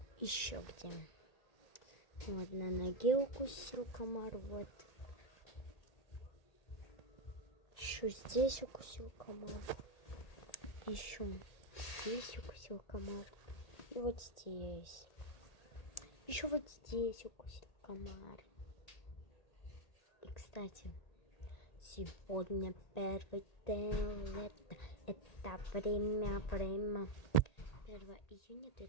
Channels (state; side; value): late; right; 1.8 ms